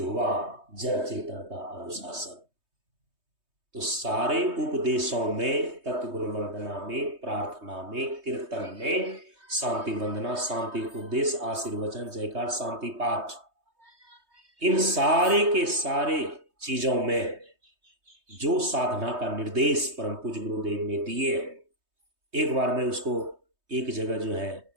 जड़ चेतन का अनुशासन। तो सारे उपदेशों में, तत्व गुण वंदना में, प्रार्थना में, कीर्तन में, शांति वंदना, शांति उपदेश, आशीर्वचन, जयकार, शांति पाठ, इन सारे के सारे चीजों में जो साधना का निर्देश परम पूज्य गुरुदेव ने दिए, एक बार मैं उसको एक जगह जो है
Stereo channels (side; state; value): left; late; 3.2 ms